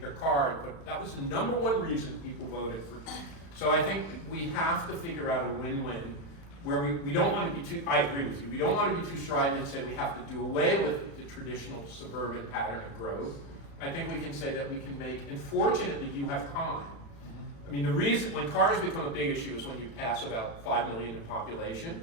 car, but that was the number one reason people voted for him. So I think we have to figure out a win-win where we don't want to be too, I agree with you, we don't want to be too strident and say we have to do away with the traditional suburban pattern of growth. I think we can say that we can make, and fortunately you have time. I mean, the reason, when cars become a big issue is when you pass about 5 million in population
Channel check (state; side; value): late; right; 36 ms